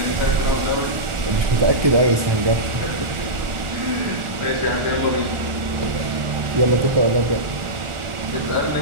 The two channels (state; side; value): late; left; 1.4 ms